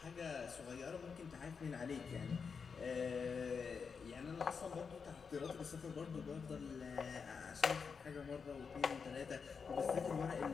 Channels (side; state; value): right; quieter; 5.7 dB